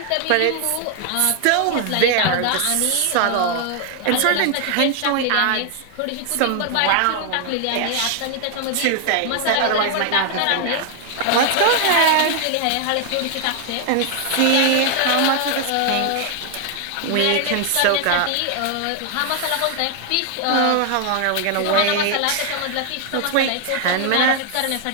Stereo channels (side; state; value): both; different; correlation 0.00